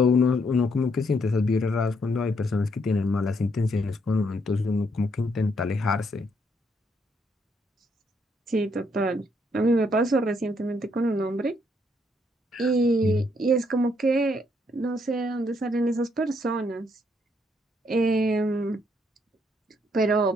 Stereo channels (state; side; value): normal; both; correlation 0.72